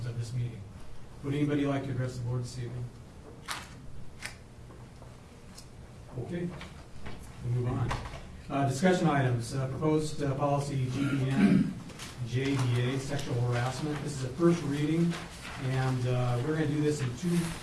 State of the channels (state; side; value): identical; both; correlation 1.00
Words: of this meeting. Would anybody like to address the board this evening? Okay, we'll move on. Discussion items. Proposed policy GBN JDA, sexual harassment. This is a first reading, and we're going to do this in two.